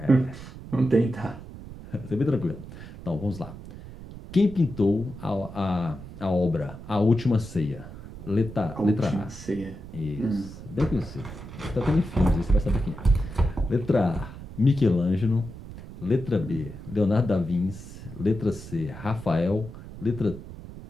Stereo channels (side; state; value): right; noise; rumble, 14 dB below the sound